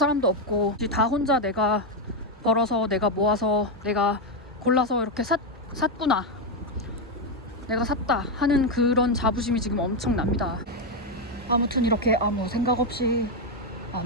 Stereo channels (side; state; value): both; normal; correlation 0.05